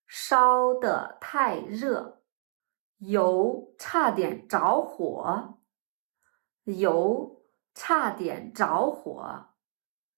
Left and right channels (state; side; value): silent; left; digital silence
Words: 烧得太热。油差点着火，油差点着火，